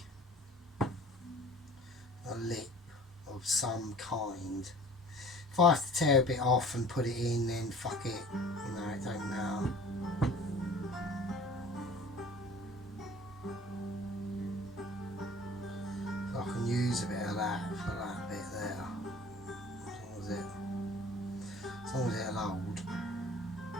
lip of some kind. If I have to tear a bit off and put it in, then fuck it, you know, it don't matter. So I can use a bit of that for that bit there, as long as it'll hold.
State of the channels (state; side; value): normal; both; correlation 0.46